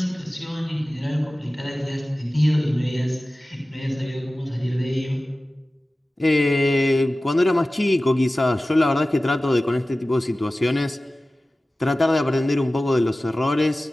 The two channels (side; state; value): both; normal; correlation 0.96